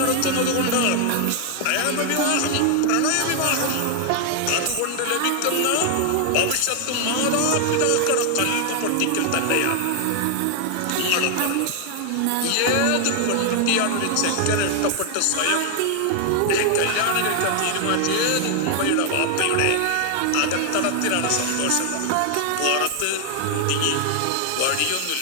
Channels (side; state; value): both; different; correlation 0.00